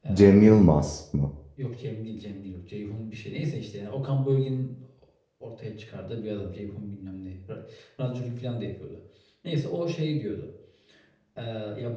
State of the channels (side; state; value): both; identical; correlation 1.00